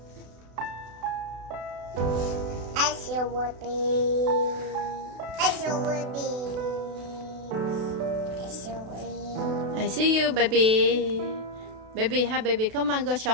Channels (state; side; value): late; left; 32 ms